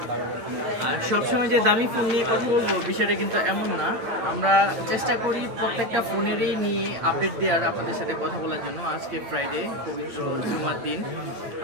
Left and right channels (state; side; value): late; left; 9.0 ms